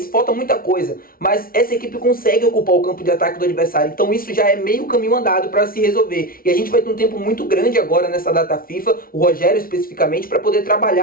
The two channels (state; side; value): late; right; 0.43 ms